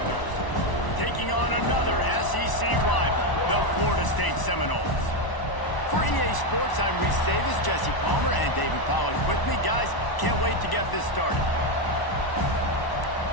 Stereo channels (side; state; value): right; late; 1.0 ms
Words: taking on another SEC rival, the Florida State Seminoles. For EA Sports, I'm Reese Davis, Jesse Palmer, and David Pollack with me. Guys, can't wait to get this started.